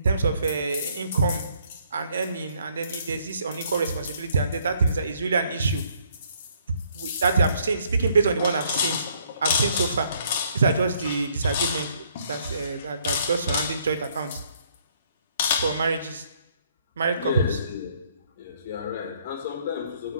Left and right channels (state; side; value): inverted; both; correlation -0.66